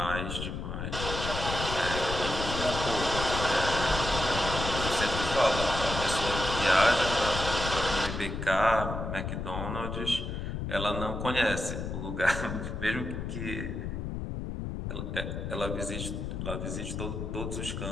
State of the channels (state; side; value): noise; left; rumble, 4 dB below the sound